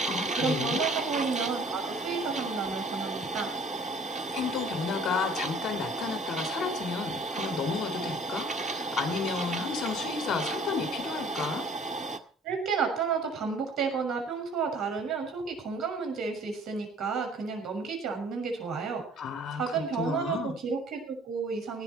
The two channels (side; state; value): both; normal; correlation 0.53